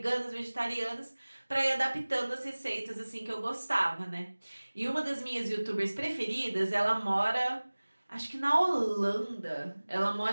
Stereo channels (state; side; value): inverted; both; correlation -1.00